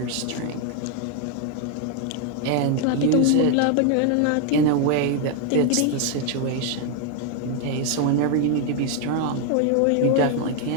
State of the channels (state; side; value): different; both; correlation 0.01